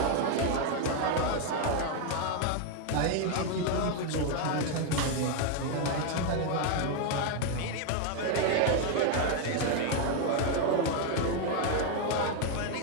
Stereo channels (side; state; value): both; different; correlation 0.01